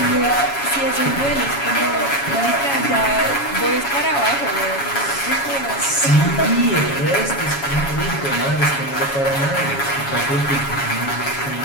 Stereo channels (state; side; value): late; right; 7.2 ms